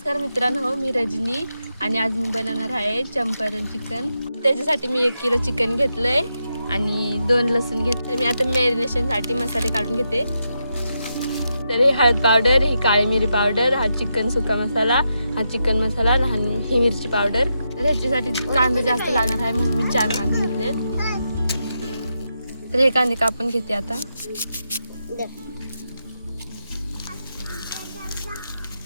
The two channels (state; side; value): inverted; both; correlation -0.85